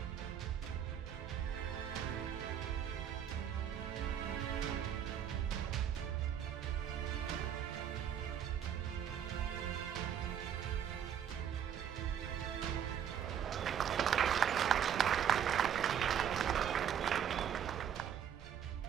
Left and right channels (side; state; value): left; quieter; 9.0 dB